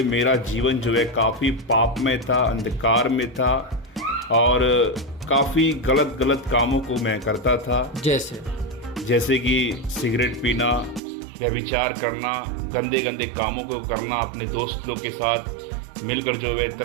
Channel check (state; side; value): drops out; left; at 11.0 s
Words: मेरा जीवन जो है काफ़ी पाप में था, अंधकार में था और काफ़ी गलत कामों को मैं करता था। जैसे कि सिगरेट पीना, व्यभिचार करना, गंदे कामों को करना, अपने दोस्त लोग के साथ मिलकर जो है